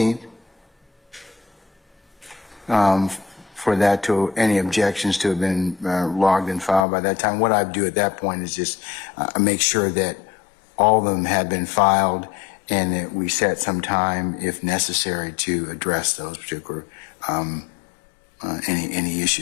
For that to, any objections to have been logged and filed by that time. What I'd do at that point is just make sure that all of them have been filed and that we set some time, if necessary, to address those particular, any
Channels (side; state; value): right; drops out; at 6.9 s